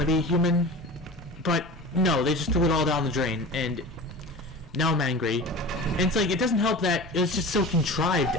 to be a human, but no, they just threw it all down the drain, and now I'm angry. And it's like, it doesn't help that it was just so contrived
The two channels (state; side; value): normal; both; correlation 0.34